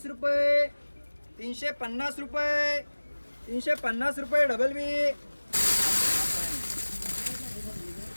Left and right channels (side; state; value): both; inverted; correlation -1.00